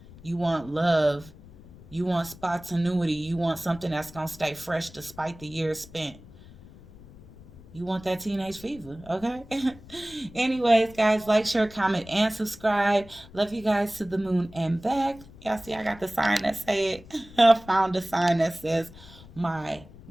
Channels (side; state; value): left; noise; rumble, 20 dB below the sound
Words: You want love. You want spontaneity. You want something that's going to stay fresh despite the years spent. You want that teenage fever, okay? Anyways, guys, like, share, comment, and subscribe. Love you guys to the moon and back. Y'all see I got the sign that said, I found a sign that says my